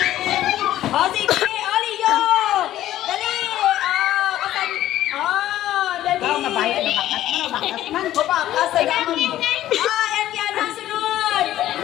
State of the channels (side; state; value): right; quieter; 13.4 dB